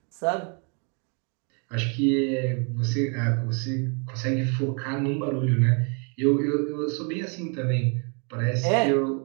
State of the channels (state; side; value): quieter; left; 37.8 dB